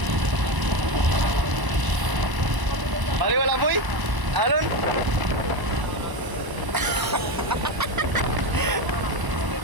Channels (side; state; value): left; late; 1.0 ms